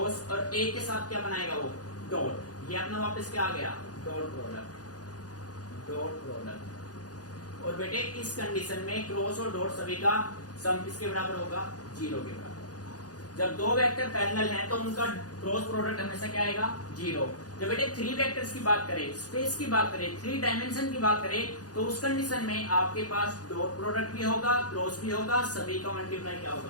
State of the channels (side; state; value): right; late; 0.68 ms